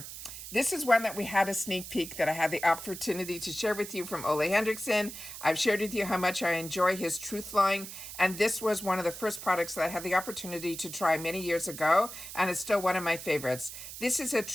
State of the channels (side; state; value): right; noise; hiss, 11 dB below the sound